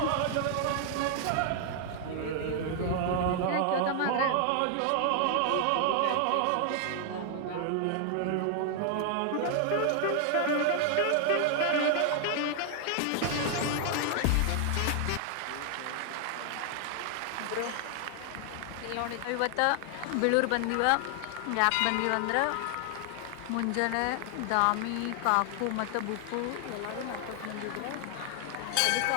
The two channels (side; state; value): both; different; correlation 0.00